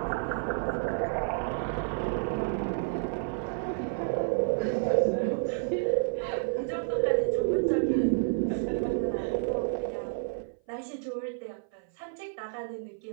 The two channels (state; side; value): silent; left; 56 dB below the other